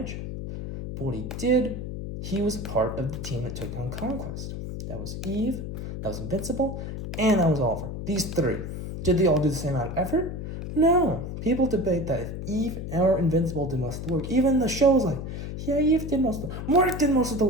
But what he did, he was a part of the team that took down Conquest. That was Eve, that was Invincible, and that was Oliver. These three. Did they all do the same amount of effort? No. People debate that if Eve or Invincible did most of the work. Even the show's like, yeah, Eve did most of the work. Mark did most of the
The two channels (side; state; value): left; noise; hum, 6 dB below the sound